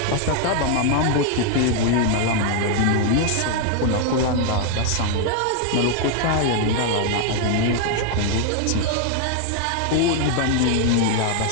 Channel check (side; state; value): both; different; correlation 0.00